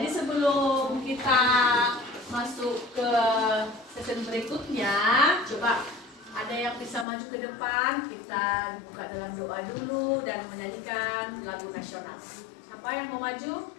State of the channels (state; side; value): drops out; right; at 7.1 s